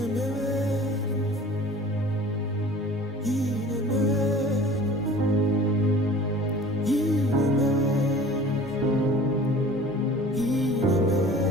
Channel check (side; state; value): both; normal; correlation 0.44